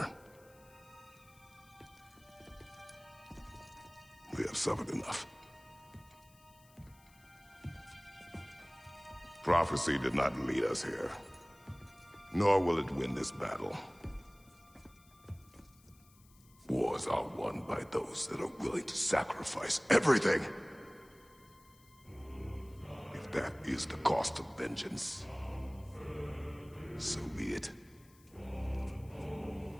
We have suffered enough. Prophecy did not lead us here, nor will it win this battle. Wars are won by those that are willing to sacrifice everything. If that is the cost of vengeance, so be it.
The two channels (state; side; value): noise; left; hiss, 27 dB below the sound